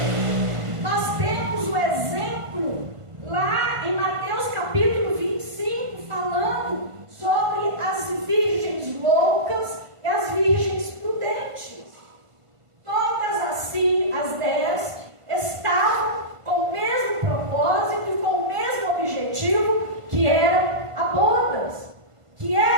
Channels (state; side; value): late; left; 1.5 ms